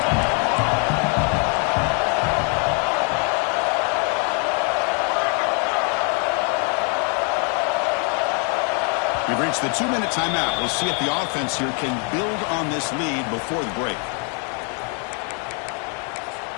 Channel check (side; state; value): right; quieter; 38.1 dB